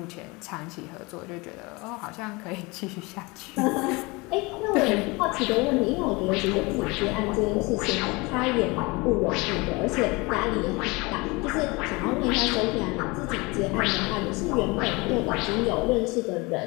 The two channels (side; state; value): right; quieter; 25.3 dB